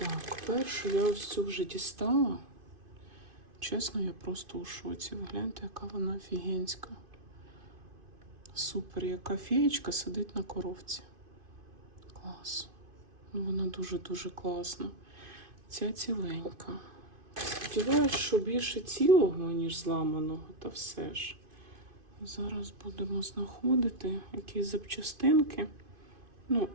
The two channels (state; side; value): late; left; 2.5 ms